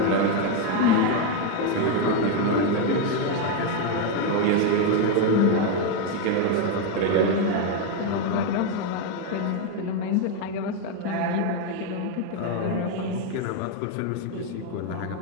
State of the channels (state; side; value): different; both; correlation 0.02